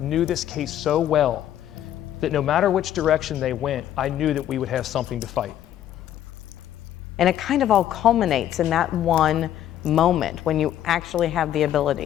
this case so well that no matter which direction they went, I knew that we would have something to fight. And it kind of all culminates in that one moment when you actually have the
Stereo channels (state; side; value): quieter; right; 11.4 dB